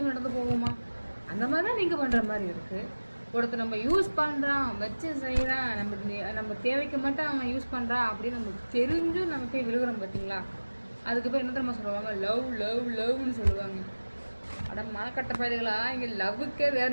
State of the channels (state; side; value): inverted; both; correlation -1.00